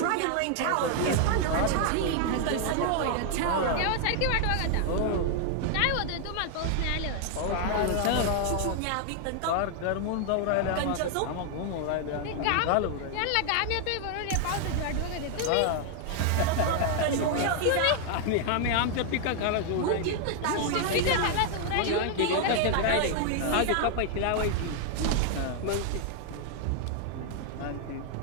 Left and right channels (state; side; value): different; both; correlation 0.00